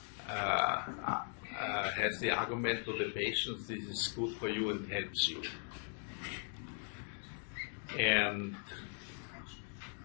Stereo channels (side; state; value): right; silent; 52 dB below the other